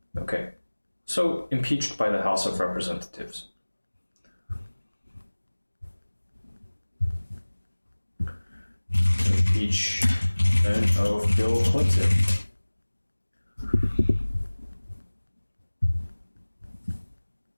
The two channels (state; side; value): inverted; both; correlation -1.00